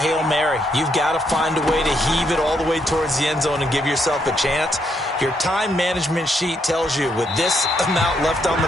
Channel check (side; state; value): both; normal; correlation 0.75